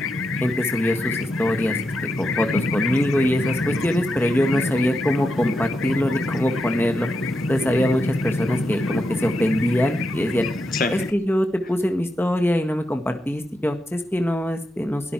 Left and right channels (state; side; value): normal; both; correlation 0.85